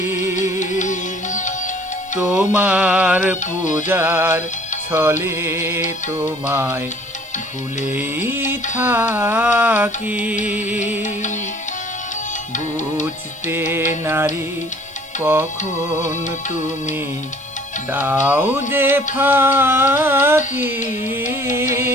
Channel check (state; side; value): noise; left; hiss, 26 dB below the sound